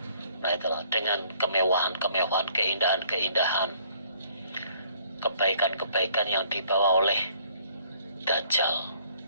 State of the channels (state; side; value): inverted; both; correlation -0.61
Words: nah itulah, dengan kemewahan-kemewahan, keindahan-keindahan, kebaikan-kebaikan yang dibawa oleh Dajjal.